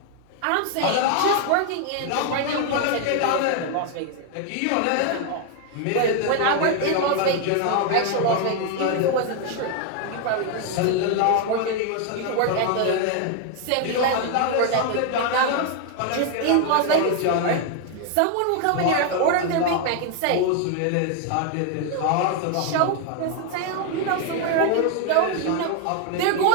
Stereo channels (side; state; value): both; different; correlation 0.01